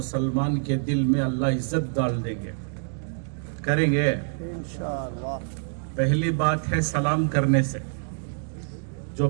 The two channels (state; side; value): silent; left; digital silence